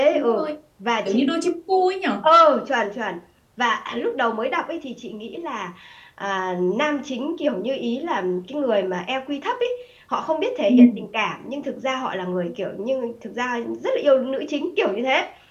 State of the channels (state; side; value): identical; both; correlation 1.00